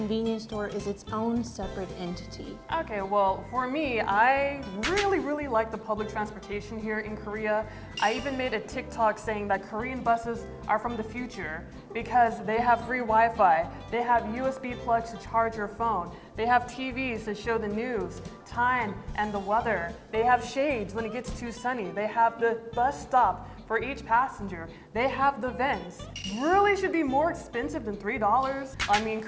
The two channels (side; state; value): both; identical; correlation 1.00